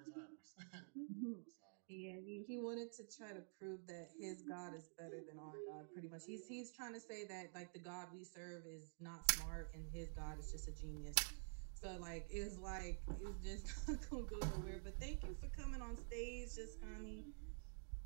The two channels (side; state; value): left; silent; digital silence